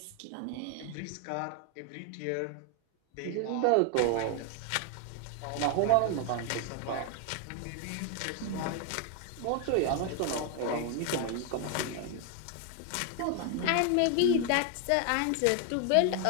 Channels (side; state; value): both; different; correlation 0.00